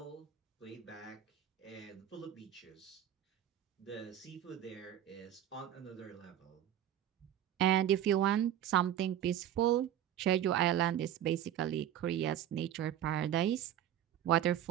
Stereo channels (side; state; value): left; quieter; 11.0 dB